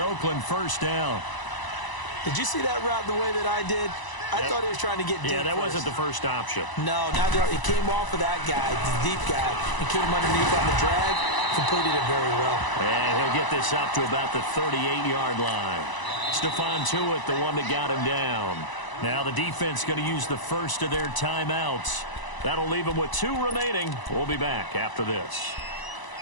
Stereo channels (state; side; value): late; right; 1.0 ms